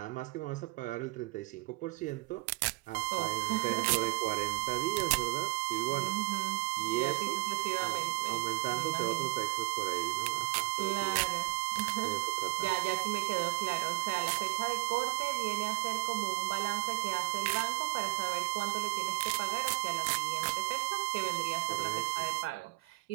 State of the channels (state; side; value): quieter; left; 22.6 dB